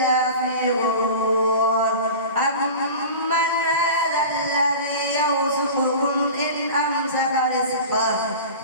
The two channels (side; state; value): both; inverted; correlation -0.34